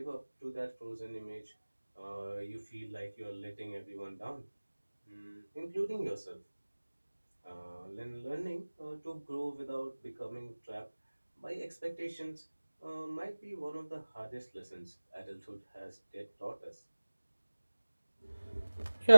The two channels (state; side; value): inverted; both; correlation -1.00